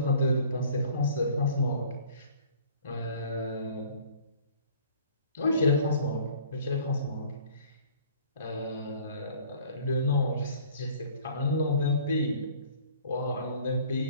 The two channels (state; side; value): inverted; both; correlation -0.52